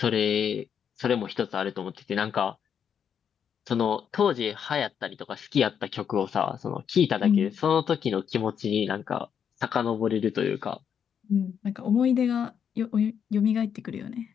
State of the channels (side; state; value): right; quieter; 7.9 dB